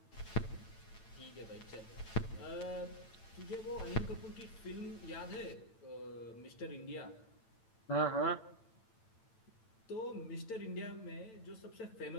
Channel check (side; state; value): right; late; 8.9 ms